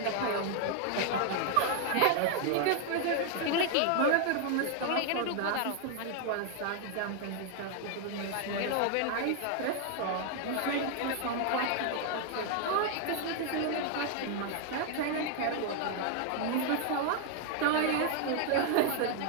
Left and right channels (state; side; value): different; both; correlation 0.00